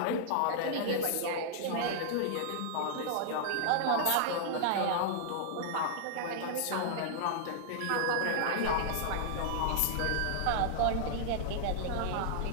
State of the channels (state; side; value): different; both; correlation -0.01